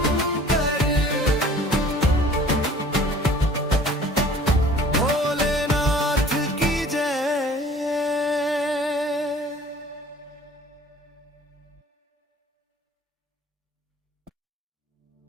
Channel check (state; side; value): normal; both; correlation 0.49